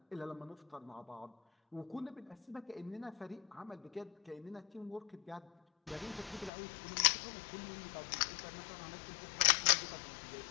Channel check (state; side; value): drops out; right; at 6.5 s